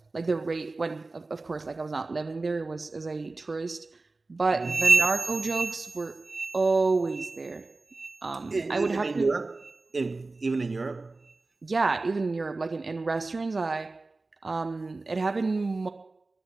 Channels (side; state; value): left; quieter; 3.4 dB